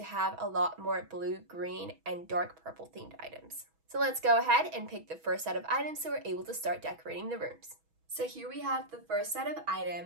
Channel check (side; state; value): left; late; 6.2 ms